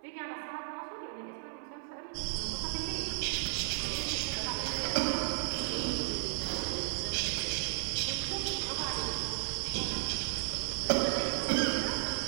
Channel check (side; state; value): left; silent; 55 dB below the other